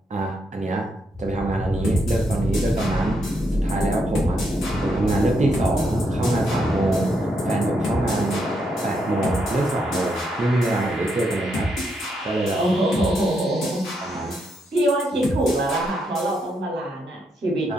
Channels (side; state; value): both; normal; correlation 0.79